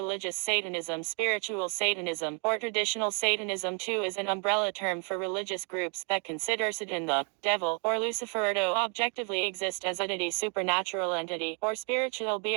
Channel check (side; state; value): left; quieter; 37.7 dB